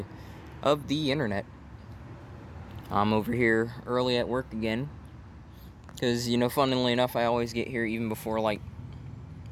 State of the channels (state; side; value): identical; both; correlation 1.00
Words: of the internet. I'm over here early at work again, because funnily enough, I always get here even before